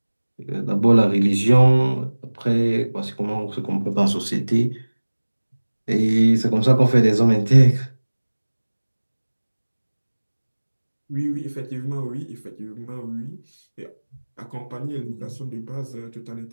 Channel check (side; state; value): both; inverted; correlation -1.00